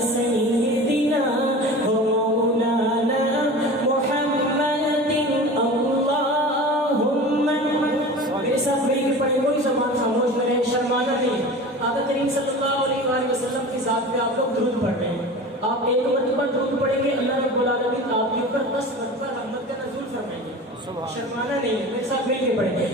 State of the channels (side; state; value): both; normal; correlation 0.35